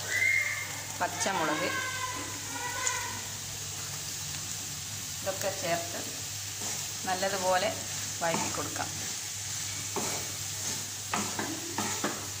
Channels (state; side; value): identical; both; correlation 1.00